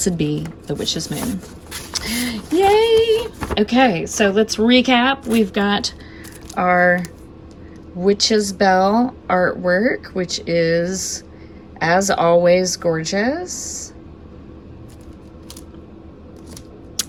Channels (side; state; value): both; identical; correlation 1.00